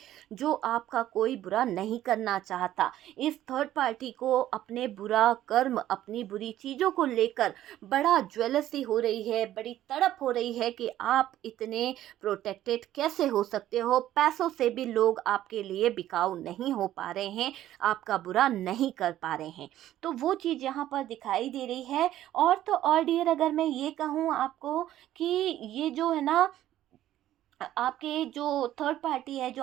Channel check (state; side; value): quieter; left; 13.1 dB